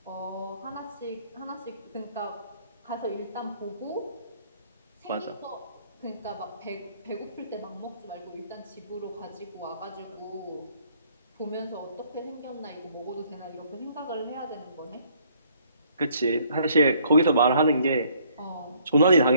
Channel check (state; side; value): inverted; both; correlation -0.63